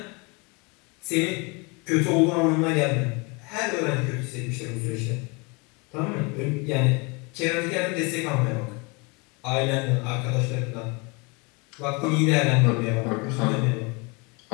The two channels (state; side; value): quieter; right; 29.4 dB